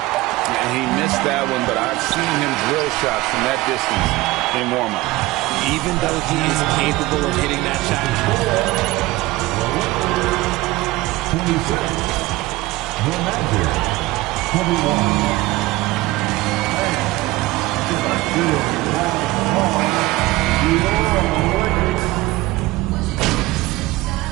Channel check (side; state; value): left; quieter; 19.5 dB